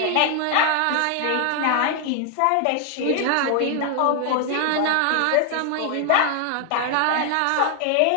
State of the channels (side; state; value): both; different; correlation 0.00